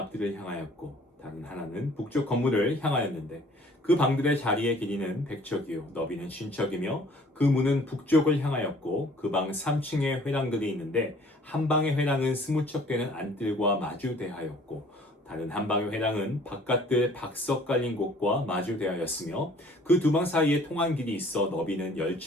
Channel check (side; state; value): both; normal; correlation 0.54